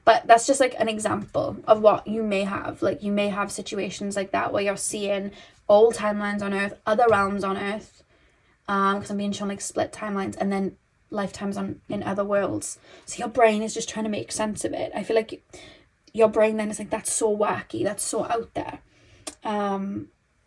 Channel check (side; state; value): both; identical; correlation 1.00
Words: But that's just like an example of what you may have. Like, you may have situations like that where you're seeing old timelines on Earth, other realms on Earth, because I'm being shown like split timelines, and then lifetimes in other worlds. So your brain is just trying to make sense of it. I feel like your brain then is like, that's so wacky, that's so out there.